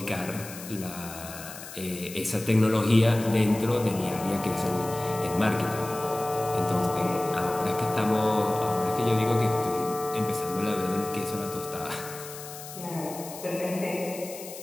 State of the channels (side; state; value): left; noise; hiss, 13 dB below the sound